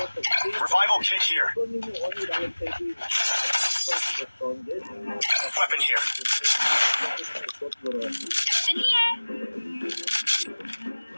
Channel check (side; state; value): both; inverted; correlation -1.00